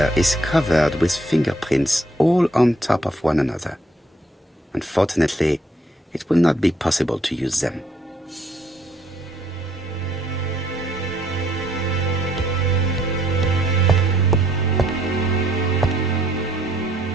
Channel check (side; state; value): both; normal; correlation 0.67